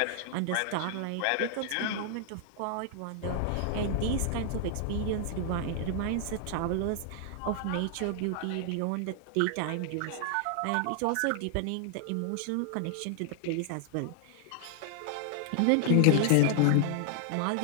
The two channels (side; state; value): both; different; correlation 0.00